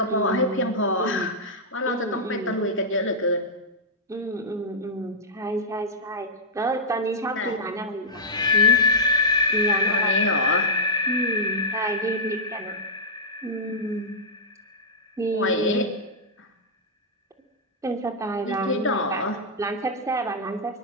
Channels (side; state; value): both; normal; correlation -0.10